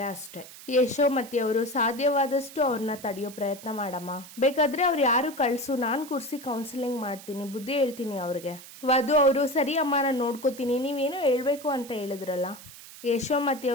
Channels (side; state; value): right; noise; hiss, 17 dB below the sound